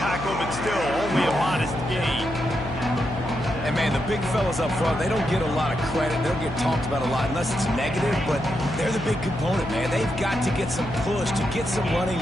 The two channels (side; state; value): left; noise; hum, 9 dB below the sound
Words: tackle, but still only a modest gain. And, man, the big fellas up front, they don't get a lot of credit. They don't get talked about a lot unless it's negative, but they're the big component, man. They've got to get some push, to get some running